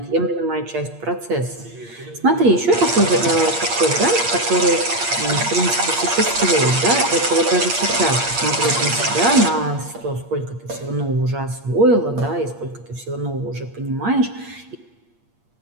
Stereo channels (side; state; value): left; late; 8.5 ms